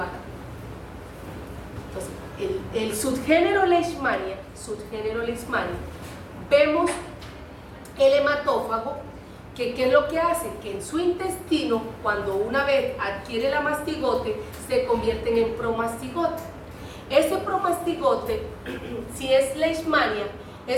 Entonces, el subgénero Leishmania, vemos el hematófago, que ¿qué es lo que hace? Que en su intestino, cuando una vez adquiere la mastigote, se convierten en promastigote. Ese promastigote, si es Leishmania,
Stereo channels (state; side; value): identical; both; correlation 1.00